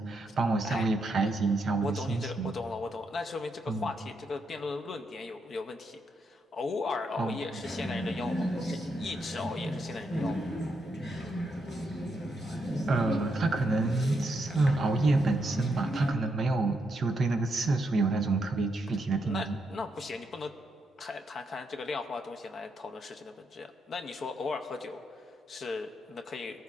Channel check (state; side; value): normal; both; correlation 0.80